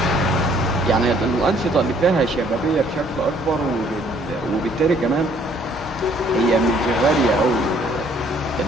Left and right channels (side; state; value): both; normal; correlation 0.62